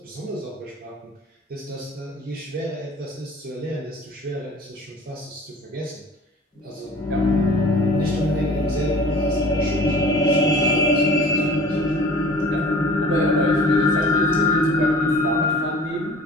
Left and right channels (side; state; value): both; normal; correlation 0.45